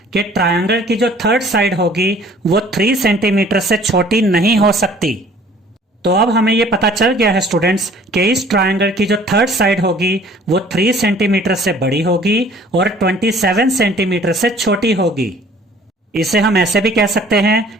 कि ट्रायंगल की जो थर्ड साइड होगी वो 3 सेंटीमीटर से छोटी नहीं हो सकती। तो अब हमें यह पता चल गया है स्टूडेंट्स कि इस ट्रायंगल की जो थर्ड साइड होगी वो 3 सेंटीमीटर से बड़ी होगी और 27 सेंटीमीटर से छोटी होगी। इसे हम ऐसे भी कह सकते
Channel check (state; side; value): normal; both; correlation 0.53